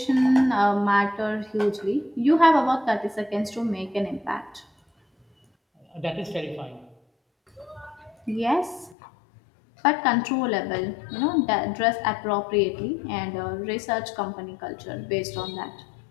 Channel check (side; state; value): right; drops out; at 9.0 s